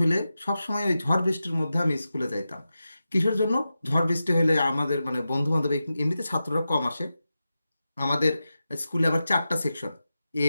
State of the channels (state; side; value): inverted; both; correlation -0.92